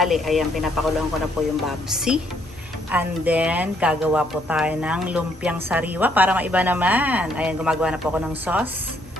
Ayan, pinapakuluan ko na po yung babsi. And then, gagawa po tayo ng lumpiang sariwa para maiba naman. Ayan, gumagawa na po ako ng sauce.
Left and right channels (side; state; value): both; normal; correlation 0.69